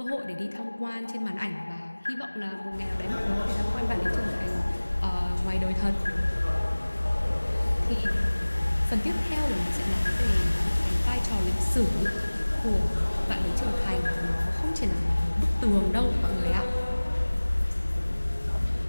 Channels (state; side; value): inverted; both; correlation -1.00